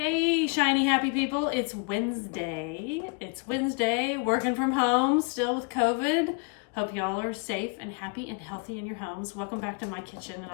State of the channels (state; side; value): quieter; right; 33.6 dB